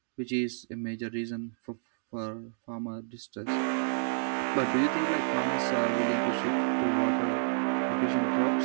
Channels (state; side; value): silent; left; digital silence